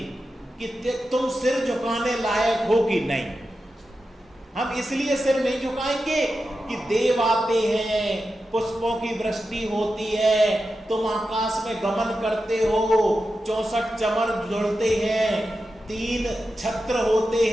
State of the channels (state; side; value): normal; both; correlation 0.91